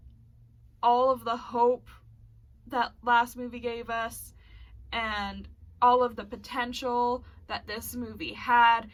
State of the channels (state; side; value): identical; both; correlation 1.00